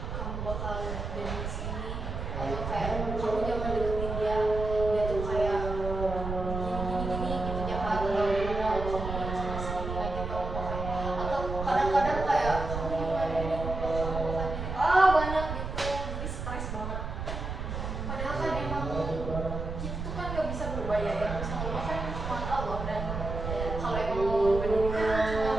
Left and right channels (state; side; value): noise; right; rumble, 5 dB below the sound